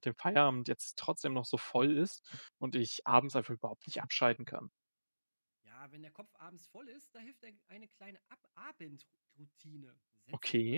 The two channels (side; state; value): both; inverted; correlation -1.00